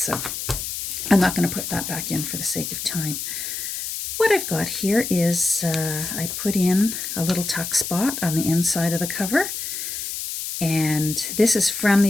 I'm not going to put that back in for the sake of time. What I've got here is I put in a little tuck spot on the inside of the cover, and this is from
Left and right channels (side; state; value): left; noise; hiss, 5 dB below the sound